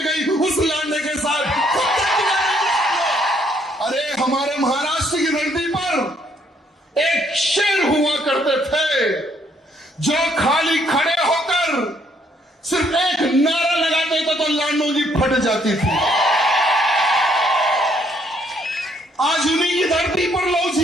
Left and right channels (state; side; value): normal; both; correlation 0.68